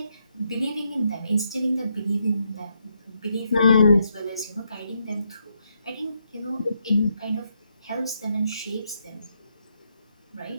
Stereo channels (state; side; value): inverted; both; correlation -0.79